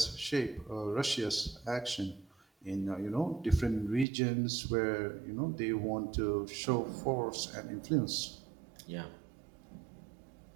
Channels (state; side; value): drops out; left; at 4.0 s